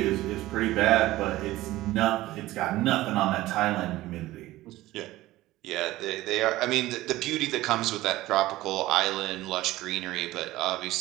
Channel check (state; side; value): quieter; left; 17.0 dB